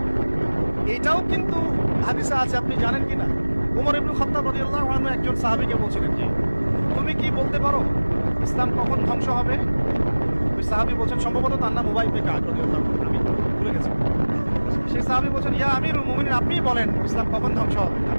এইটাও কিন্তু হাদিসে আছে, আপনি জানেন কি না? উমর ইবনে খাত্তাব রাদিয়াল্লাহু আনহু একজন সাহাবীকে বলছিলেন যে তুমি কি বলতে পারো ইসলাম কখন ধ্বংস হবে? ওই সাহাবী বলছেন, সম্ভবত তার নাম উবাই ইবনে কাব রাদিয়াল্লাহু আনহু, আমি ভুলে গেছি। সেই সাহাবী বলছেন, ইয়া আমিরুল মুমিনিন, আপনিই বলেন ইসলাম কখন ধ্বংস হবে,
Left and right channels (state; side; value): inverted; both; correlation -1.00